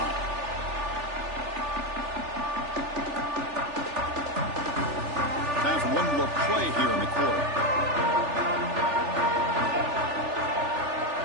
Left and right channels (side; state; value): left; late; 3.4 ms